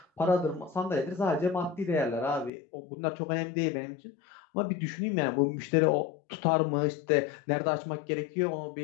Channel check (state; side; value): drops out; right; at 2.5 s